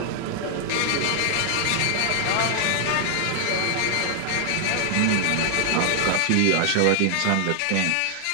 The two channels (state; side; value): different; both; correlation 0.00